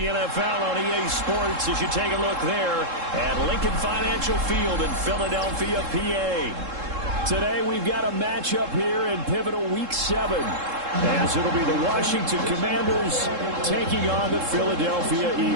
NFL on EA Sports as you take a look there at Lincoln Financial Field in Philadelphia, PA. Today we've got a matchup here in pivotal Week 7 as it'll be the Washington Commanders taking on the Philadelphia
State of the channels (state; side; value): late; left; 3.7 ms